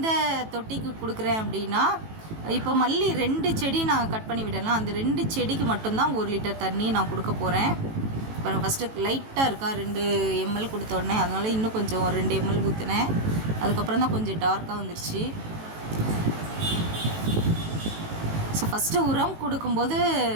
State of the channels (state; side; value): late; left; 18 ms